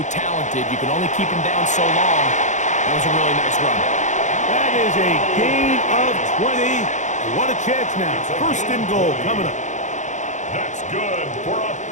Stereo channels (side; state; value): right; late; 0.35 ms